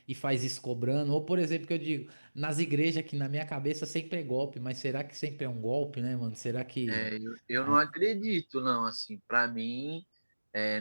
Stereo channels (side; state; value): both; inverted; correlation -1.00